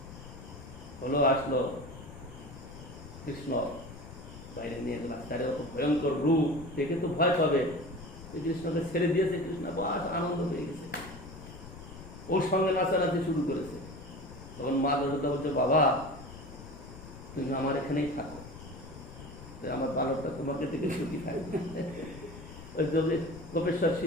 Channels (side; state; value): left; noise; rumble, 14 dB below the sound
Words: হলো, আসলো কৃষ্ণ বাইরে নিয়ে গেলাম, তারে অত ভয়ঙ্কর রূপ দেখে তো ভয় পাবে। শ্রীকৃষ্ণকে ছেড়ে দিয়েছে, কৃষ্ণ বাস আনন্দ হয়ে গেছে, ওর সঙ্গে নাচানাচি শুরু করেছে। তখন মা যশোদা বলছে, বাবা তুমি আমার এখানেই থাকো, আমার বালকটা তোমাকে থেকে সুখী থাকবে। ওই যে গোপেশ্বর